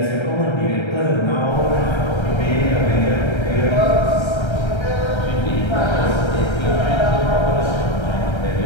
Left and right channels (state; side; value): late; right; 1.3 ms